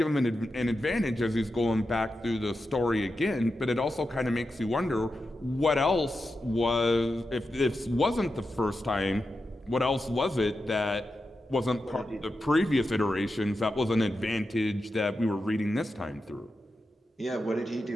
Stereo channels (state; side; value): normal; both; correlation 0.89